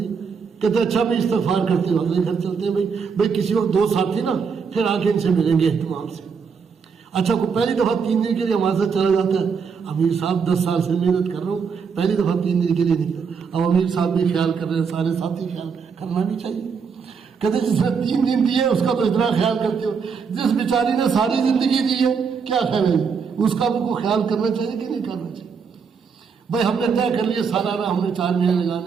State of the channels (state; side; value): quieter; left; 5.9 dB